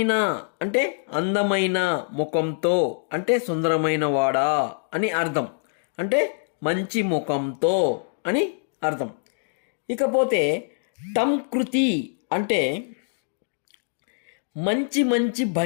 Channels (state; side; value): silent; right; digital silence